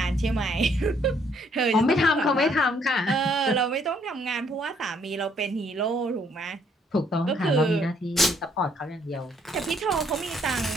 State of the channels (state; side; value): normal; both; correlation 0.67